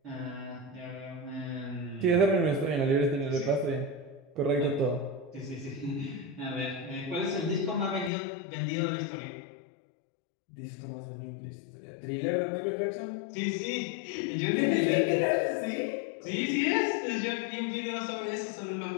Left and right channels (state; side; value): drops out; right; at 8.1 s